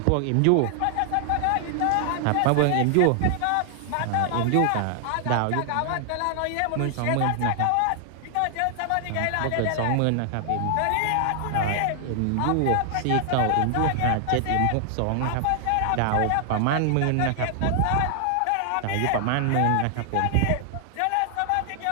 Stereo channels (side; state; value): both; different; correlation 0.00